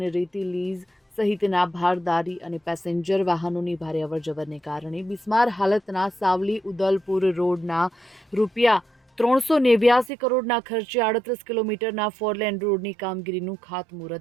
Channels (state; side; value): drops out; left; at 10.1 s